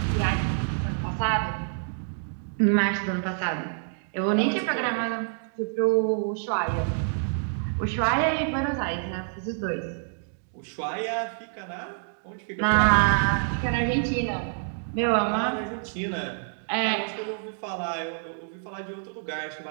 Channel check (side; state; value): left; silent; digital silence